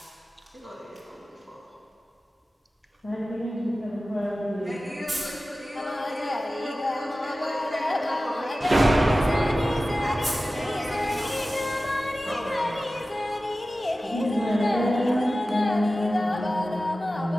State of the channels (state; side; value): normal; both; correlation 0.95